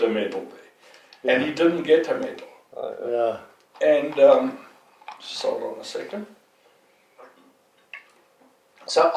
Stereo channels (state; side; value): identical; both; correlation 1.00